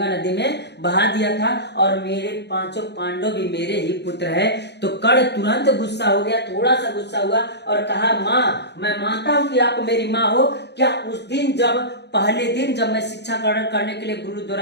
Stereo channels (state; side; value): late; right; 0.50 ms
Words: नदी में बहा दिया था, और मेरे पांचों पांडव भी मेरे ही पुत्र है। तो कर्ण तुरंत गुस्सा हो गया, थोड़ा सा गुस्सा हुआ और कहा, माँ मैं मानता हूं कि आप मेरी माँ हो, क्या उस दिन पहले दिन जब मैं शिक्षा ग्रहण करने के लिए गुरु